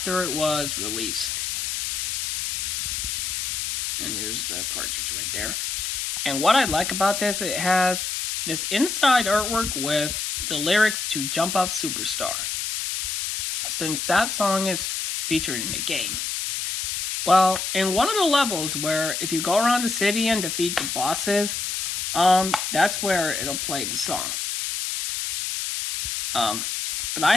it was released. And here's the cartridge right there. And what I like about this, it has this inside artwork with the lyrics to Jump Up Superstar, since that song is featured in the game. Well, in one of the levels where if you go around the city and defeat the bosses, that's where it'll play the song. But I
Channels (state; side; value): noise; left; hiss, 2 dB below the sound